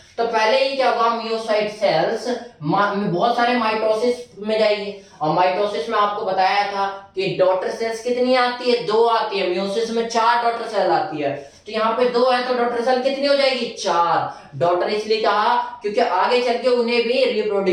तो पहले ही क्या होगा, मियोसाइट सेल्स बहुत सारे माइटोसिस में जाएगी, और माइटोसिस में आपको बताया था कि डॉटर सेल्स कितनी आती है, 2 आती है, मियोसिस में 4 डॉटर सेल आती है। तो यहाँ पे 2 है तो डॉटर सेल कितनी हो जाएगी, 4। डॉटर इसलिए कहा क्योंकि आगे चल के उन्हें भी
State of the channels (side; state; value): both; identical; correlation 1.00